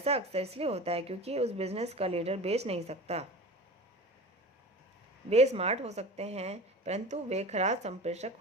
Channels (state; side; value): normal; both; correlation 0.35